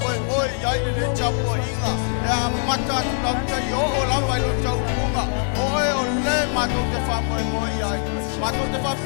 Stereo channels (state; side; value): silent; right; digital silence